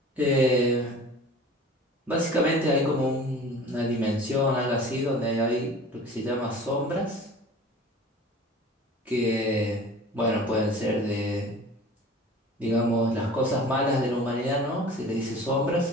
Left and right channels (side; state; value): both; normal; correlation 0.42